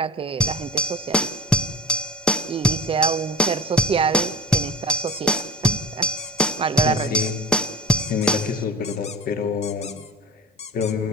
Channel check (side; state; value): both; normal; correlation 0.38